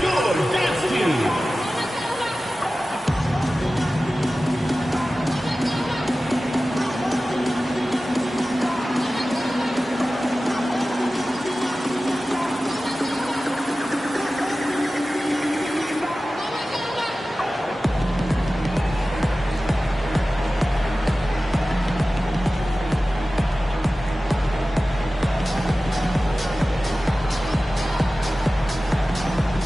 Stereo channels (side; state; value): both; normal; correlation 0.96